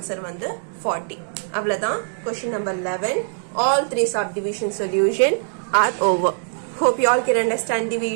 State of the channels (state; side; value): silent; left; digital silence